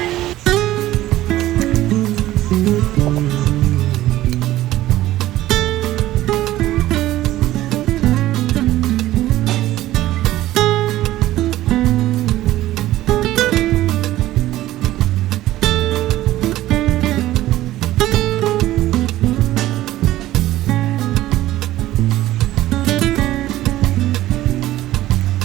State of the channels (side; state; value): left; quieter; 15.2 dB